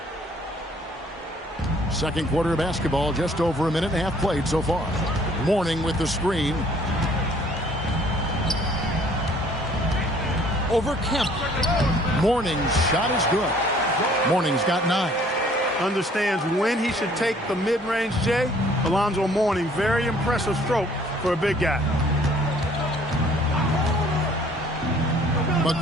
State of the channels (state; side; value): normal; both; correlation 0.57